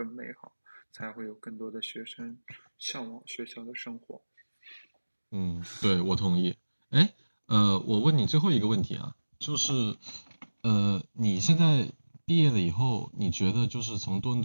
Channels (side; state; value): both; inverted; correlation -1.00